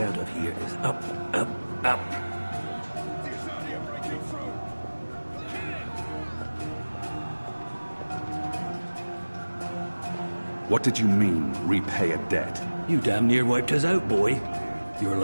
out of here is up, up, up. What did you mean, repay a debt? You damn near wiped us out, boy. Your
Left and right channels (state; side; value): inverted; both; correlation -1.00